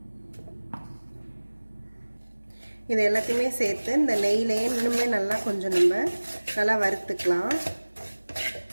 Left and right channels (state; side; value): inverted; both; correlation -1.00